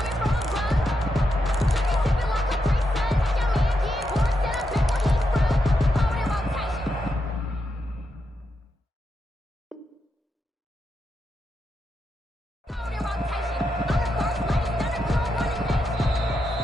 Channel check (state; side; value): normal; both; correlation 0.84